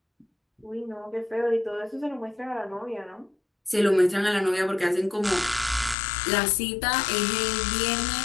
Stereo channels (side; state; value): right; drops out; at 6.0 s